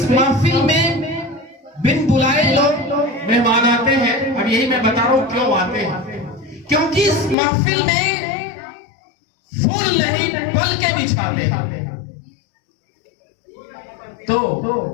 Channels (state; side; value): drops out; right; at 7.4 s